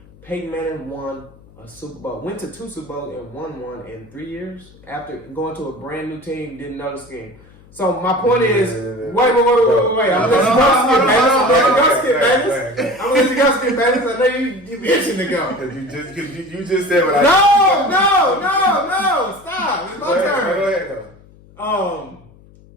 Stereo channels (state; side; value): noise; left; hum, 25 dB below the sound